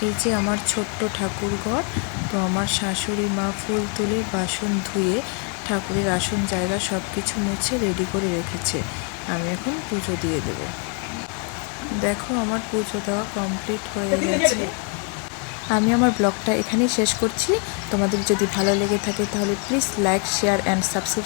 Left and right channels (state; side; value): quieter; right; 38.6 dB